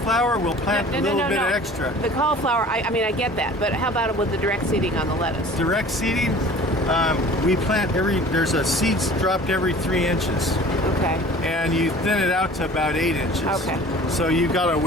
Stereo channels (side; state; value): both; normal; correlation 0.45